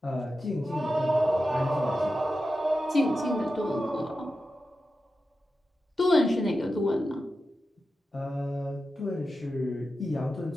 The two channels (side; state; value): both; normal; correlation 0.91